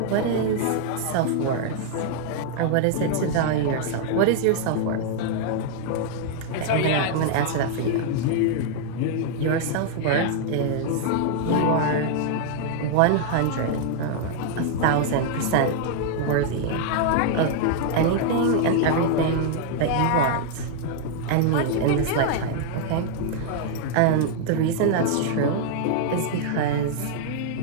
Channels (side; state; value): both; different; correlation -0.01